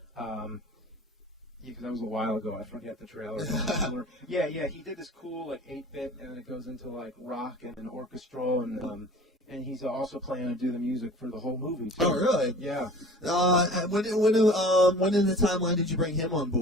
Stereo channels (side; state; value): both; normal; correlation 0.44